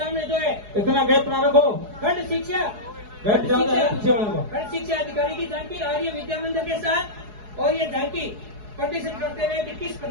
जो है इतना गैप ना रखो। खंड शिक्षा खंड शिक्षा अधिकारी की झांकी आर्य विद्या मंदिर के साथ, और ये झांकी प्रदर्शन करते हुए कि किस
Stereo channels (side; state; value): left; late; 4.8 ms